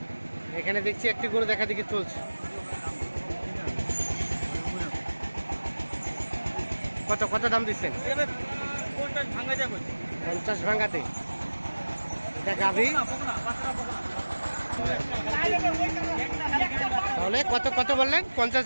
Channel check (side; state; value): both; inverted; correlation -1.00